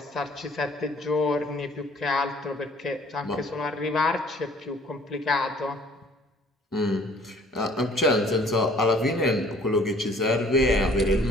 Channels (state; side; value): normal; both; correlation 0.55